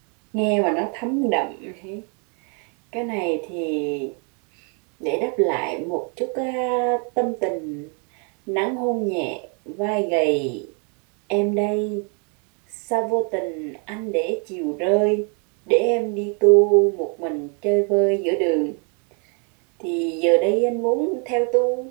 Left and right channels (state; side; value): quieter; left; 37.9 dB